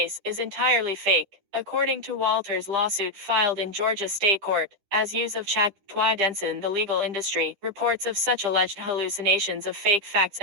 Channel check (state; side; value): late; left; 10 ms